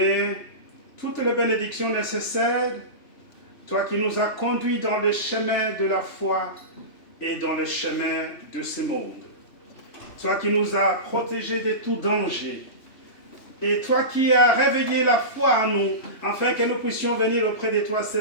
toutes les bénédictions nécessaires, toi qui nous as conduits dans le chemin de la foi et dans le chemin de ce monde. Toi qui nous as protégés de tout danger. Et toi qui as réveillé la foi en nous, afin que nous puissions venir auprès de toi ce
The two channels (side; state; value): right; late; 3.1 ms